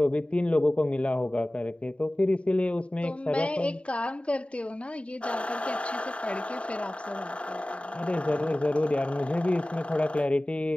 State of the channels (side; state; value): right; late; 0.061 ms